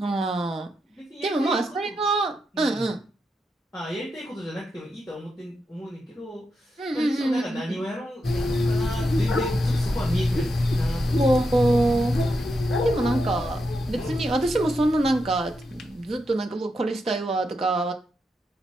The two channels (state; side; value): normal; both; correlation 0.85